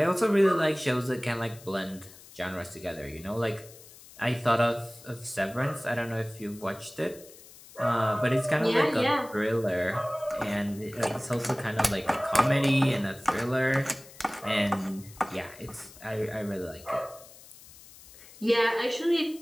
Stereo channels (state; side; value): noise; left; hiss, 20 dB below the sound